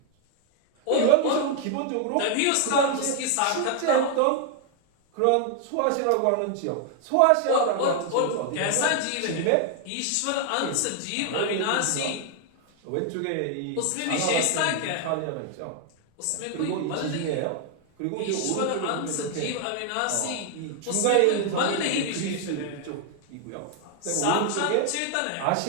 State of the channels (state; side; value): different; both; correlation 0.00